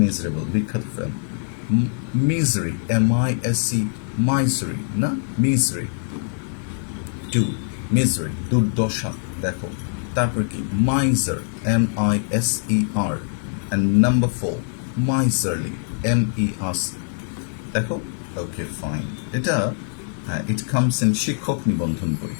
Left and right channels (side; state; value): right; silent; digital silence